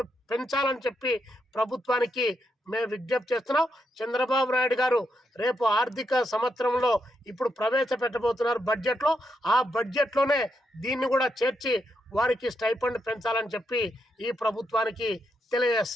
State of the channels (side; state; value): both; normal; correlation 0.81